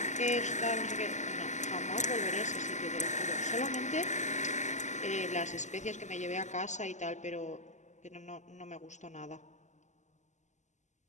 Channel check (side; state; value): right; late; 0.34 ms